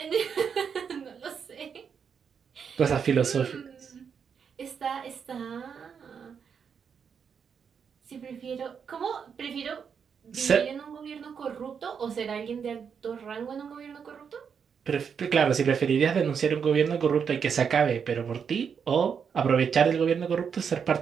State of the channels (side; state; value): left; quieter; 6.8 dB